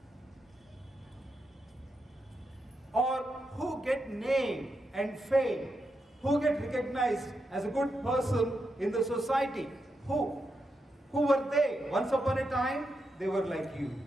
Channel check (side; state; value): both; normal; correlation 0.85